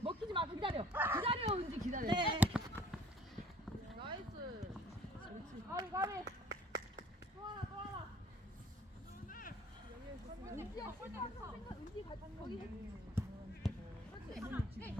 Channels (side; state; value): both; normal; correlation 0.53